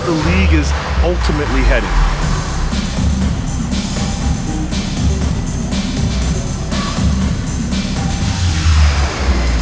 league is ultimately headed.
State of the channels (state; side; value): identical; both; correlation 1.00